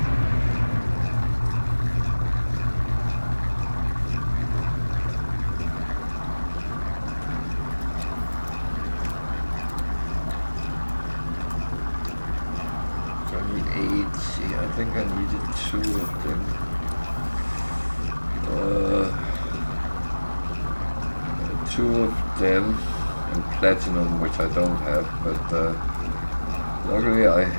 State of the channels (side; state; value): both; inverted; correlation -1.00